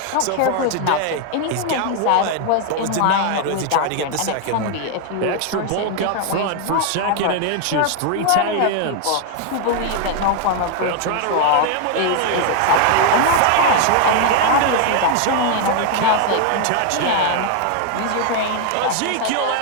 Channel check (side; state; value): both; different; correlation 0.00